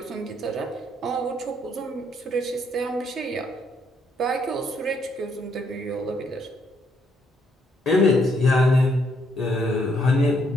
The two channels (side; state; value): both; normal; correlation 0.72